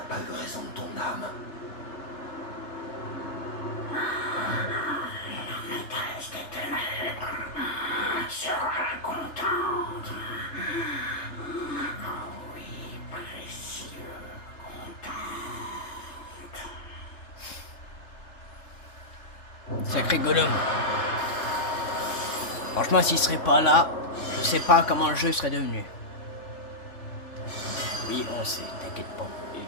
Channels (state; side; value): late; right; 3.3 ms